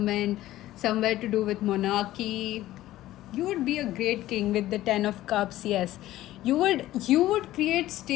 somewhere to do with monarchy. You would be a great king with the 10 of Cups. Yes, you would create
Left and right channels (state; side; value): quieter; right; 15.1 dB